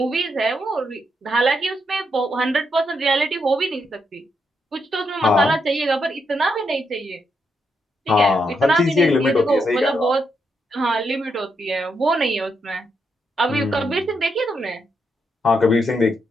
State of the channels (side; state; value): both; normal; correlation 0.80